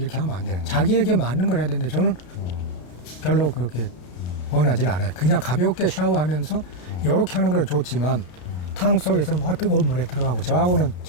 하면 안 돼요. 자기에게 맞는 걸 해야 되는데 저는 별로 그렇게 원하지는 않아요. 그냥 가볍게 샤워하면서 이렇게 하는 건 좋지만 탕 속에서 뭐 뜨거운 물에 들어가고 저하고는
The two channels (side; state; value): right; late; 33 ms